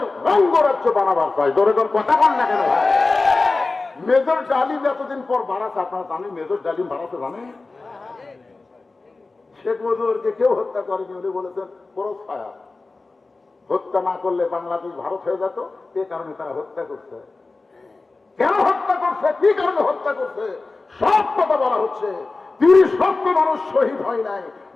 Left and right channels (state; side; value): quieter; right; 3.6 dB